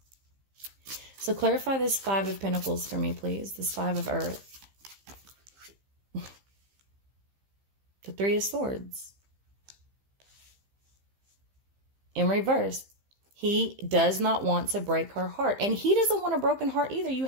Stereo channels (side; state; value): left; late; 15 ms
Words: So clarify this Five of Pentacles for me, please. This Five of Earth. The Three of Swords. In reverse. He does not want to break her heart. And he doesn't want a broken heart either. You